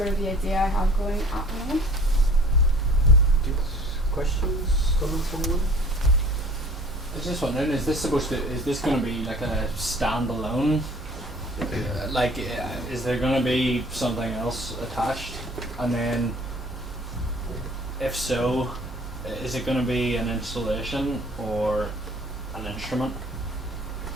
of the idea I have going at the moment. Questions, comments, anyone? I was just wondering, is this going to be like a standalone? Is there going to be something else attached? And then, if so, is it going to be an installation or an instrument?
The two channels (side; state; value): both; normal; correlation 0.50